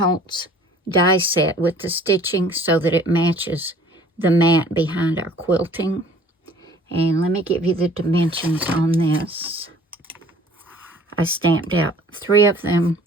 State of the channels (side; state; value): both; normal; correlation 0.52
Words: die set with the stitching so that it matches the mat behind our quilting. And let me give you the dimensions on this. I stamped out 3 of them,